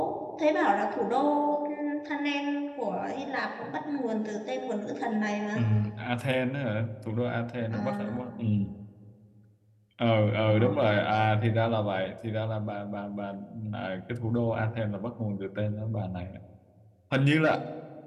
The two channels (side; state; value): both; identical; correlation 1.00